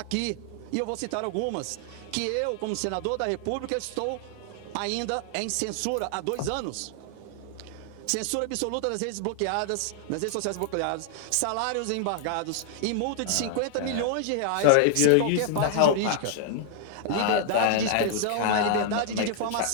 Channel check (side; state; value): both; different; correlation -0.01